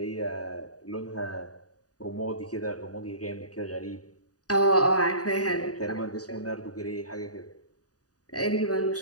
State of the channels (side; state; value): right; late; 0.68 ms